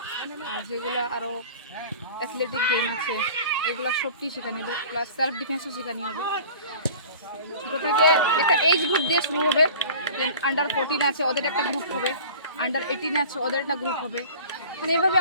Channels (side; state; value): both; inverted; correlation -0.43